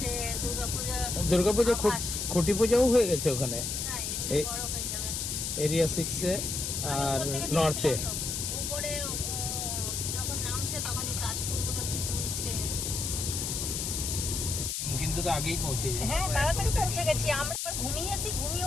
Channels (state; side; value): noise; left; hiss, 2 dB below the sound